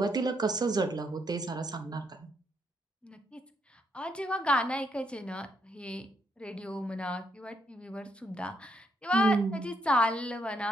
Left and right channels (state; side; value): normal; both; correlation 0.74